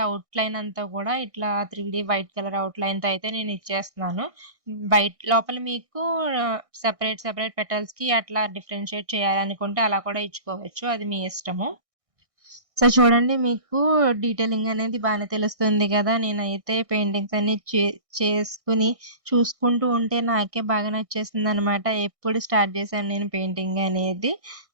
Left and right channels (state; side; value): late; left; 1.6 ms